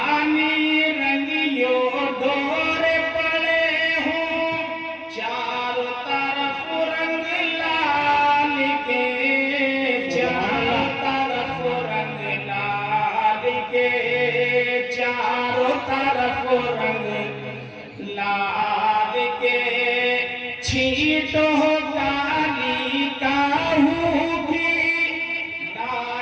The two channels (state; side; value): identical; both; correlation 1.00